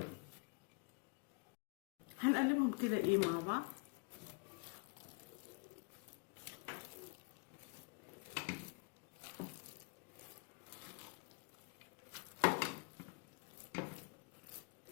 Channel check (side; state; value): right; quieter; 32.2 dB